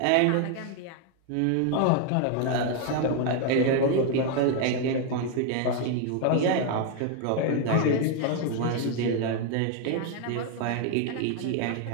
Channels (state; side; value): different; both; correlation 0.01